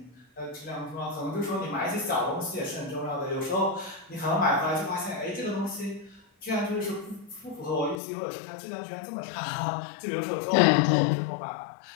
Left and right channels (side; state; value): right; drops out; at 8.0 s